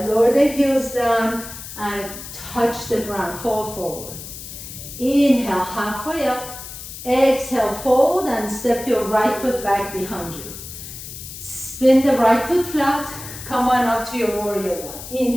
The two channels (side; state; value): left; noise; hiss, 12 dB below the sound